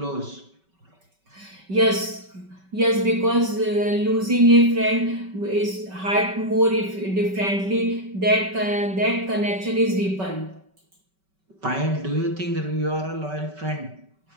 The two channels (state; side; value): late; left; 5.2 ms